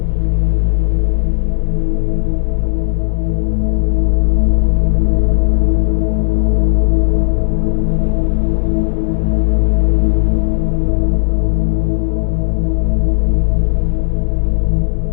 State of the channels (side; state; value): right; silent; digital silence